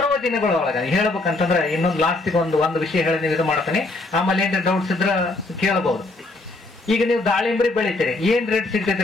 ದಿನಗಳೊಳಗ ಹೇಳ್ಬೇಕಂತಂದ್ರೆ ಇನ್ನೊಂದು ಲಾಸ್ಟಿಗೆ ಒಂದು ವಿಷಯ ಹೇಳಿ ನೀವು ಇದು ಮಾಡ್ತಾನೆ. ಆಮೇಲೆ ಏನ್ರಿ ಡೌಟ್ಸ್ ಇದ್ರ ಕೇಳಬಹುದು. ಈಗ ನೀವು ದಾಳಿಂಬ್ರಿ ಬೆಳಿತೀರಿ, ಏನ್ ರೇಟ್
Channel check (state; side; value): quieter; right; 3.0 dB